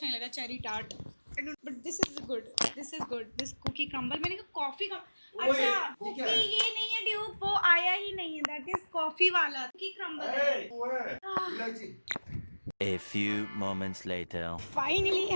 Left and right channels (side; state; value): both; inverted; correlation -1.00